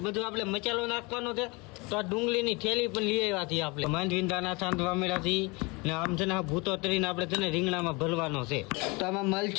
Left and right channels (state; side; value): quieter; right; 27.1 dB